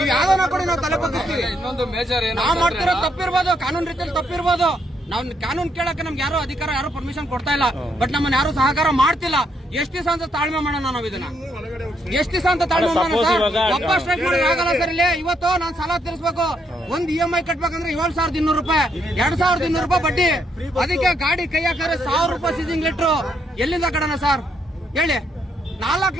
ಯಾವ್ದಾನ ಕೊಡಿ, ನಾವು ತಲೆ ಬಗ್ಗಿಸ್ತೀವಿ. ನಾವು ಮಾಡ್ತಿರೋ ತಪ್ಪಿರ್ಬೋದು, ಕಾನೂನು ರೀತಿಯಲ್ಲಿ ತಪ್ಪಿರ್ಬೋದು. ನಾವು ಕಾನೂನು ಕೇಳಕ್ಕೆ ನಮ್ಗೆ ಯಾರು ಅಧಿಕಾರ, ಯಾರು ಪರ್ಮಿಷನ್ ಕೊಡ್ತಾ ಇಲ್ಲ. ಬಟ್ ನಮ್ಮನ್ನ ಯಾರು ಸಹಕಾರ ಮಾಡ್ತಿಲ್ಲ. ಎಷ್ಟು ದಿವಸ ಅಂತ ತಾಳ್ಮೆ ಮಾಡೋಣ ನಾವು ಇದನ್ನ? ಎಷ್ಟು ದಿವಸ ಅಂತ ತಾಳ್ಮೆ ಮಾಡೋಣ ಸರ್? ಒಬ್ಬ ಸ್ಟ್ರೈಕ್ ಮಾಡಿ ಆಗಲ್ಲ ಸರ್. ಇಲ್ಲಿ ಇವತ್ತು ನಾನು ಸಾಲ ತೀರಿಸಬೇಕು, ಒಂದ್ EMI ಕಟ್ಬೇಕಂದ್ರೆ 7,200 ರೂಪಾಯಿ, 2,200 ರೂಪಾಯಿ ಬಡ್ಡಿ. ಅದಕ್ಕೆ ಗಾಡಿ ಕೈ ಹಾಕಿದ್ರೆ 1,000 ರೂಪಾಯಿ ಸೀಸಿಂಗ್ ಲೆಟ್ರು. ಎಲ್ಲಿಂದ ಕಡಣ ಸರ್ ಹೇಳಿ?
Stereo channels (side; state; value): both; normal; correlation 0.75